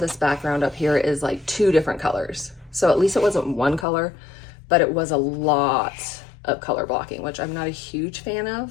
background up here is like 2 different colors. So at least it wasn't one color, but it was a lot of color blocking, which I'm not a huge fan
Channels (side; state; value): right; drops out; at 3.9 s